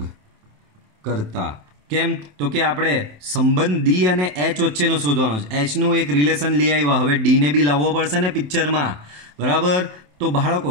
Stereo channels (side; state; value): left; late; 27 ms